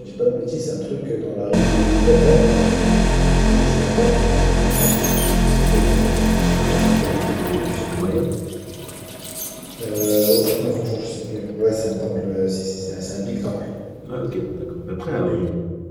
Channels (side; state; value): both; identical; correlation 1.00